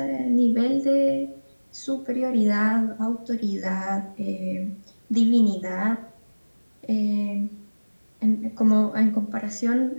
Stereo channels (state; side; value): inverted; both; correlation -1.00